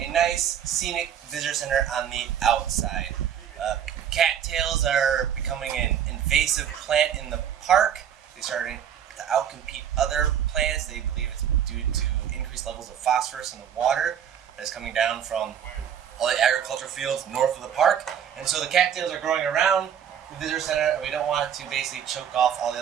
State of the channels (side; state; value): left; quieter; 9.0 dB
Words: nice scenic visitor center on the outside. Cattails are becoming an invasive plant in the park. They started to outcompete other plants. They believe it's due to increased levels of phosphorus in the water that's coming down from all the agricultural fields north of the park. And so the cattails are growing around the visitor center, and we don't want to basically choke off all the